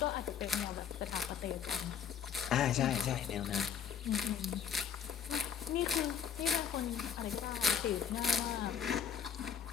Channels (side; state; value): right; quieter; 7.8 dB